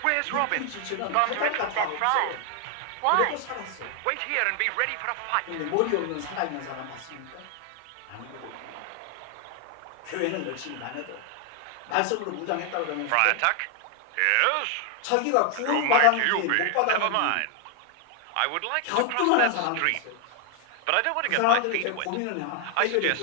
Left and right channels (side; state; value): both; different; correlation 0.00